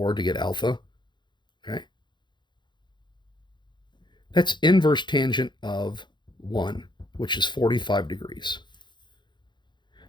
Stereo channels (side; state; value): right; late; 0.22 ms